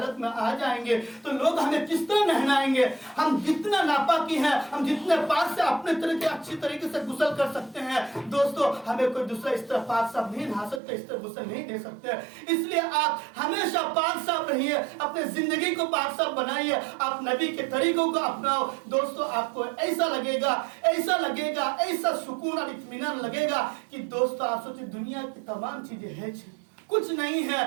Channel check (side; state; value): left; drops out; at 10.8 s